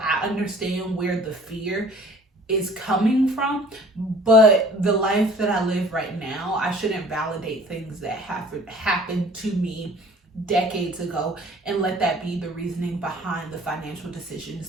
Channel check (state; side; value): normal; both; correlation 0.51